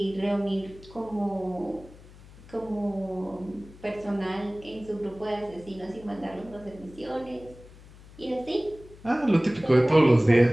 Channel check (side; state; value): left; noise; hum, 21 dB below the sound